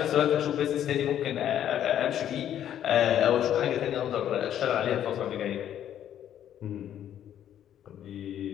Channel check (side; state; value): right; quieter; 10.6 dB